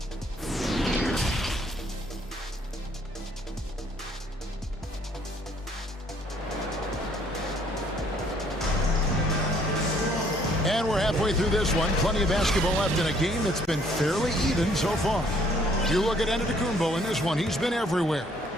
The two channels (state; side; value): normal; both; correlation 0.63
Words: And we're halfway through this one. Plenty of basketball left in a game that's been fairly even so far. You look at Antetokounmpo in this one, he's been everywhere.